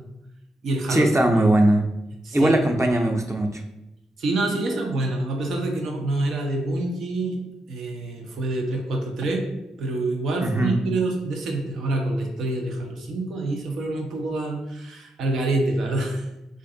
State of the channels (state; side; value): normal; both; correlation 0.83